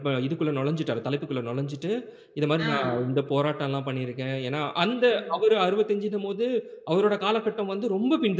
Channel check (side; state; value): both; identical; correlation 1.00